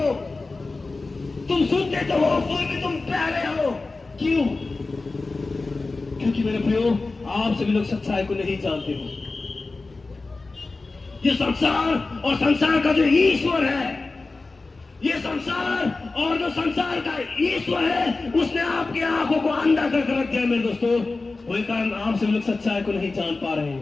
तुम सुनते तो हो फिर भी तुम बहरे हो। क्यों? क्योंकि मेरे प्रियो आप सभी लोग सच्चाई को नहीं जानते हो। ये संसार और संसार का जो ईश्वर है, ये संसार और जो संसार का ईश्वर है, उसने आपकी आंखों को अंधा कर रख दिया मेरे दोस्तों। वही कारण आप सभी लोग सच्चाई को नहीं जान पा रहे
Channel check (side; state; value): right; quieter; 3.6 dB